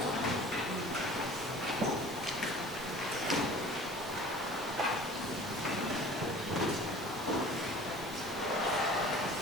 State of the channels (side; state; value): both; normal; correlation 0.45